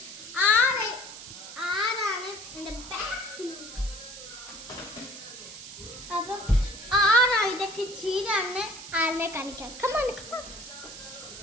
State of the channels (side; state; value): right; noise; hiss, 13 dB below the sound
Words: ആരാണ് എന്റെ ബാക്കിൽ. അപ്പം ആരാ ഇതൊക്കെ ചെയ്താണ് ആരെ കാണിക്കാം. Come on come on.